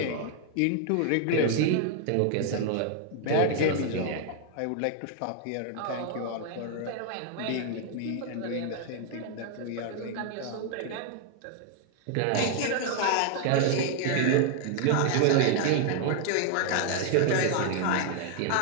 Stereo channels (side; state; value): both; different; correlation 0.00